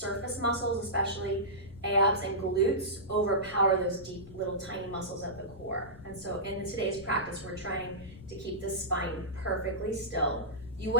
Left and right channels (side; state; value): left; noise; rumble, 19 dB below the sound